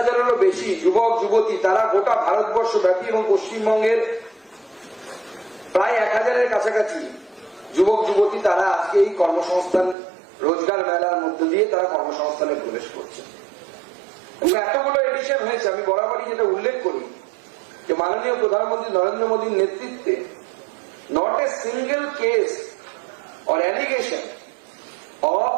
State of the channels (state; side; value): drops out; left; at 10.0 s